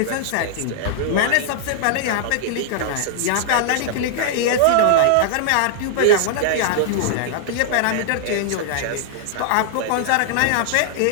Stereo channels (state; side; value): different; both; correlation -0.01